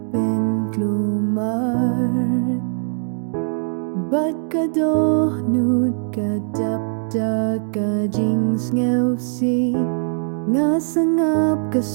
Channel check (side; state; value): left; silent; digital silence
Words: penklumar Bat ka dohnut ka dapda ka jings ngewsi Nga sangap ka